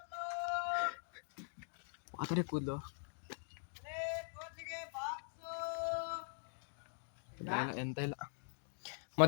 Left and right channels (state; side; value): silent; right; digital silence